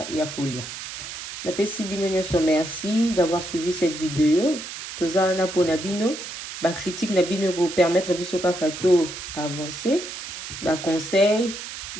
et à colia. Napesi bino nyonso merci d'avoir suivi cette vidéo. Tout ça na pour nabino, ba critique nabino pour permettre biso kakato avancer, ba conseil,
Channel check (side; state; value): right; noise; hiss, 9 dB below the sound